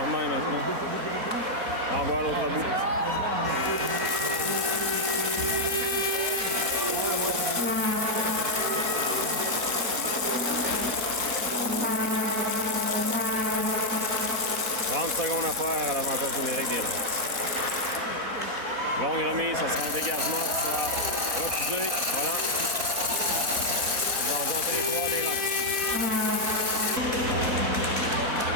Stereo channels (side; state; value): left; late; 4.1 ms